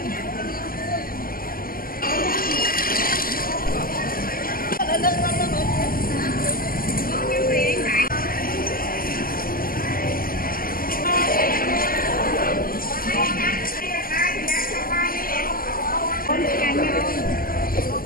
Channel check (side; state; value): right; late; 0.42 ms